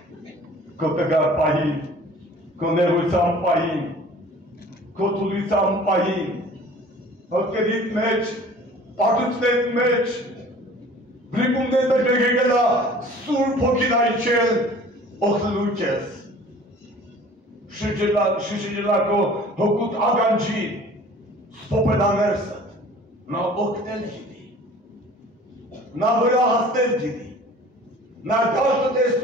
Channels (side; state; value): both; normal; correlation 0.47